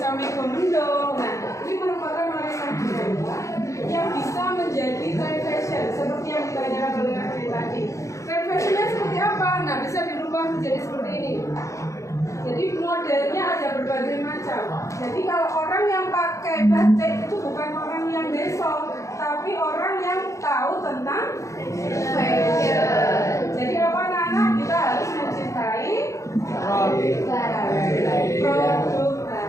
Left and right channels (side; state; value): right; late; 0.15 ms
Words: mego-mendung. Nah, ini merupakan warisan budaya yang bisa menjadi trend fashion seperti yang ditanyakan oleh Kak tadi. Trend fashionnya seperti apa? Nah, bisa dirubah menjadi seperti ini. Jadi modelnya ada berbagai macam. Jadi kalau orang yang pakai batik itu bukan orang yang besok, tapi orang yang tahu tentang fashion. Jadi apa anak-anak, kita harus mencintai produk